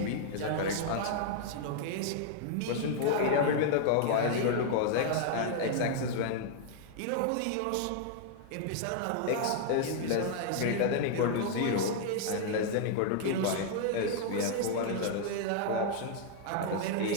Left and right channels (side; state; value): both; different; correlation 0.00